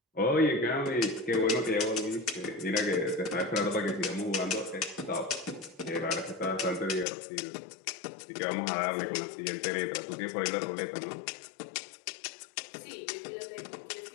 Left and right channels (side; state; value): right; drops out; at 7.1 s